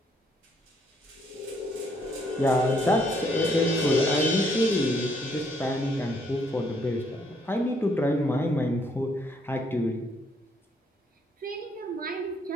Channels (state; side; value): normal; both; correlation 0.69